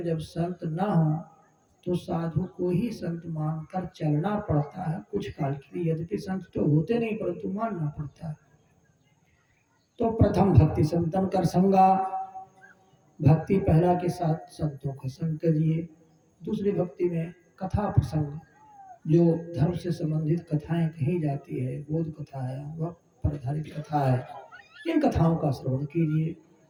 संत ना हो तो साधु को ही संत मानकर चलना पड़ता है कुछ काल के लिए। यद्यपि संत तो होते नहीं परंतु मानना पड़ता है। तो प्रथम भक्ति संतन कर संगा, भक्ति पहला के साथ संतों का संग करिए। दूसरी भक्ति में कथा प्रसंग, जो धर्म से संबंधित कथाएं कही जाती है, बोध कथा है, वह पर आधारित कथा है, इन कथाओं का श्रवण कीजिए।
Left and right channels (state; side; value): identical; both; correlation 1.00